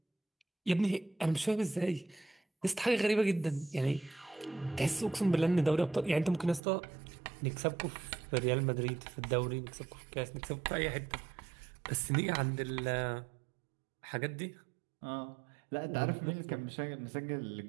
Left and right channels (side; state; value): left; drops out; at 6.6 s